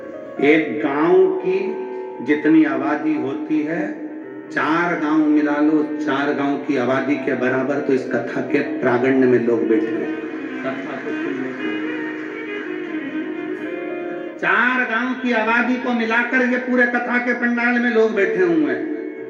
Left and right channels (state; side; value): identical; both; correlation 1.00